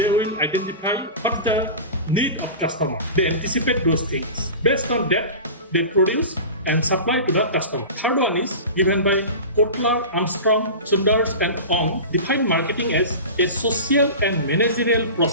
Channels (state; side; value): inverted; both; correlation -0.32